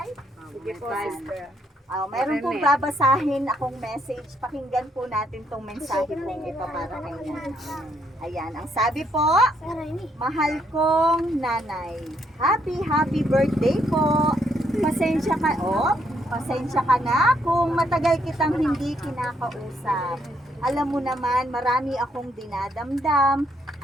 Sige po, sister. Meron pong babasahin akong message. Pakinggan po natin tong mensahe pong ito para kay nanay. Ayan, ang sabi po, mahal kong nanay, happy birthday po. Pasensya ka na kung matagal kitang hindi kinakausap. Alam mo naman, marami akong dinadamdam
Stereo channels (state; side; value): normal; both; correlation 0.72